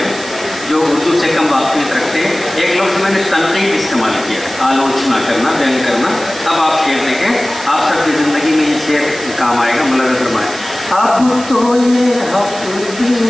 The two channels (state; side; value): noise; right; hiss, 13 dB below the sound